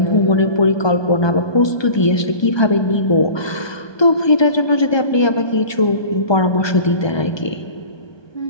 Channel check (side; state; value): right; late; 1.2 ms